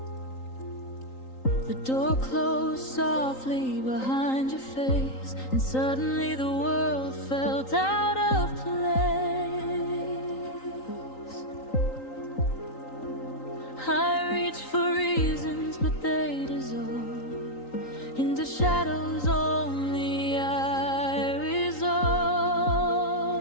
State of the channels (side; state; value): right; late; 3.9 ms